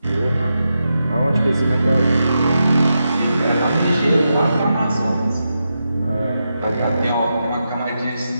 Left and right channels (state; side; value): inverted; both; correlation -0.87